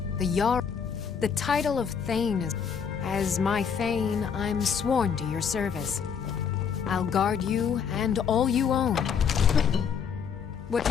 The Jarl... The title of Thane is... As my Thane, I'm sworn to your service. I'll guard you and all you own. What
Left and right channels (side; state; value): right; quieter; 7.0 dB